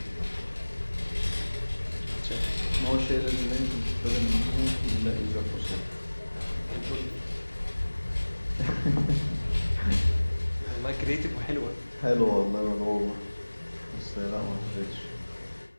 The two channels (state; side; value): inverted; both; correlation -1.00